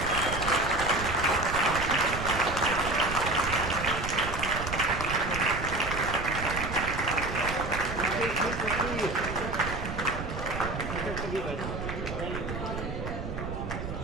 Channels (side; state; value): right; noise; rumble, 6 dB below the sound